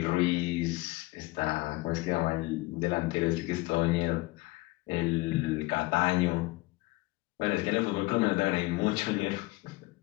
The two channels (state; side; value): quieter; right; 21.4 dB